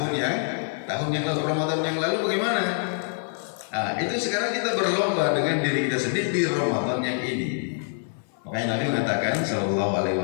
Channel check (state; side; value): silent; right; 58 dB below the other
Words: yang lalu, Ramadan yang lalu bagaimana? Itu sekarang kita berlomba dengan diri kita sendiri di Ramadan yang ini. Makanya Nabi mengatakan sallallahu alaihi